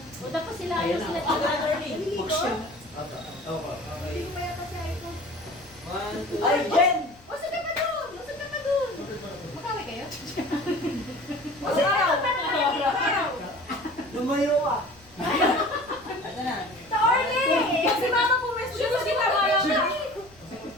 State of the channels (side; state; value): left; noise; rumble, 26 dB below the sound